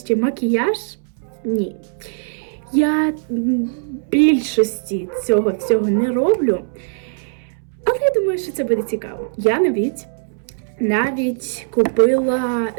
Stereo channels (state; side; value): silent; left; 66 dB below the other